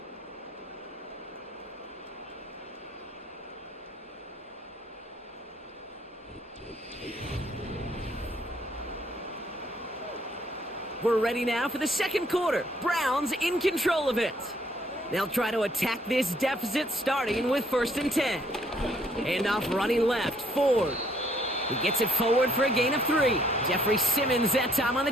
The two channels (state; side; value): normal; both; correlation 0.66